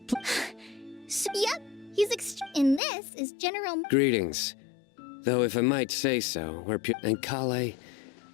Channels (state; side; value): drops out; right; at 2.8 s